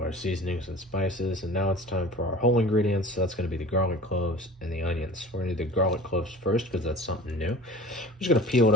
our seasonings and spices, and now it's time for our whole ingredients. So that's gonna be the garlic cloves and the onions. We're gonna do the garlic cloves first because that's something new. I'm just gonna peel it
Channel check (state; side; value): normal; both; correlation 0.40